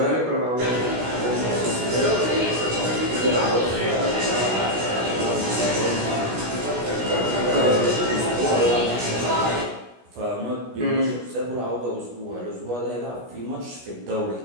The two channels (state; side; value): late; left; 16 ms